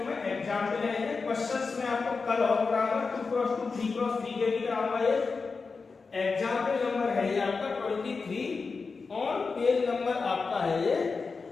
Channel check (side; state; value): right; quieter; 4.6 dB